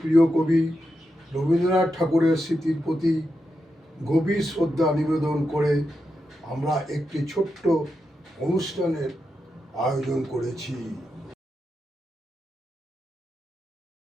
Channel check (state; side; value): normal; both; correlation 0.87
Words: প্রিয় কবি রবীন্দ্রনাথ ঠাকুরের স্মৃতির প্রতি গভীর শ্রদ্ধা নিবেদন করে আমরা একটি ছোট্ট অনুষ্ঠানের আয়োজন করেছি।